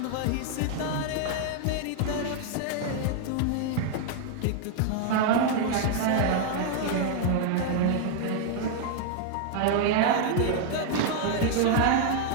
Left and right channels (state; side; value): different; both; correlation 0.00